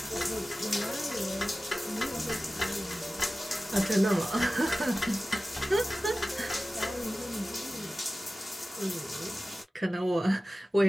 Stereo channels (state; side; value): normal; both; correlation 0.96